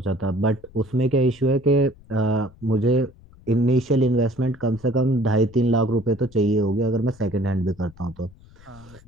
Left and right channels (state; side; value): noise; left; rumble, 24 dB below the sound